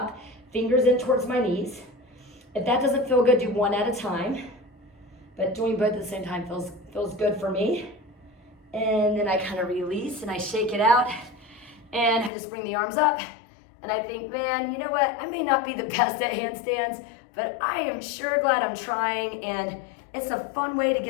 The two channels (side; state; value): right; drops out; at 12.3 s